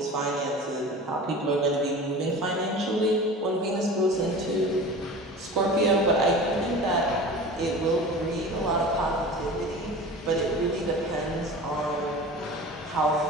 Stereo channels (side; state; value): both; normal; correlation 0.36